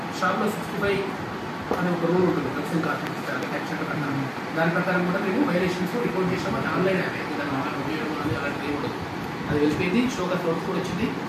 షాప్లో 65 అనే ఒక రూల్ ఉంటుంది డ్రగ్స్ అండ్ కాస్మెటిక్స్ యాక్ట్ చట్ట ప్రకారం. దాని ప్రకారం కూడా మేము వైలేషన్స్ రిపోర్ట్ చేసాము. అది ఆన్లైన్ యాప్ ఉపయోగం అని అలాంటివి ఉండదు. అది వెళ్ళిపోయింది. షోకాస్ నోట్స్ కూడా వచ్చింది.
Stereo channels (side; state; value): both; identical; correlation 1.00